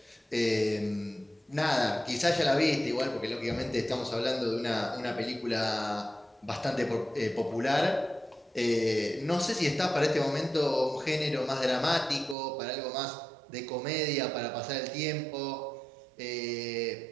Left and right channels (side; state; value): left; drops out; at 12.4 s